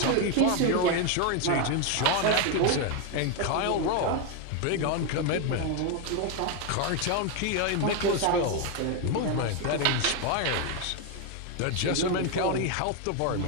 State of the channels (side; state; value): both; different; correlation 0.01